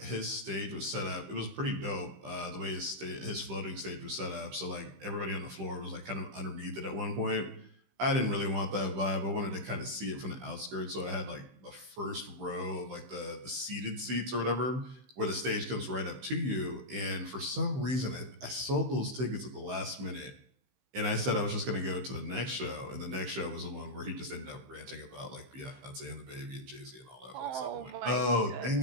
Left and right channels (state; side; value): late; left; 15 ms